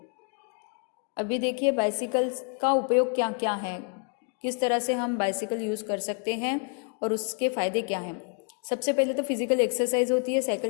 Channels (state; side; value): quieter; right; 38.8 dB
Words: अभी देखिए बाइसिकल का उपयोग क्या क्या है, किस तरह से हम बाइसिकल यूज़ कर सकते हैं और उसके फ़ायदे क्या हैं। सबसे पहले तो फिजिकल एक्सरसाइज होती है